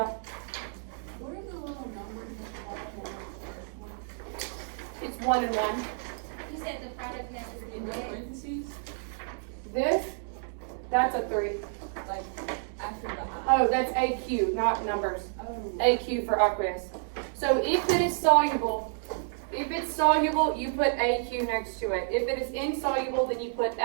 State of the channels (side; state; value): left; silent; digital silence